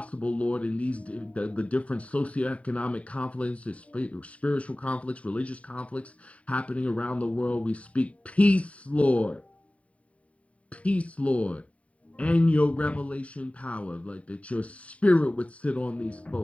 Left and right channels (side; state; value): right; late; 0.066 ms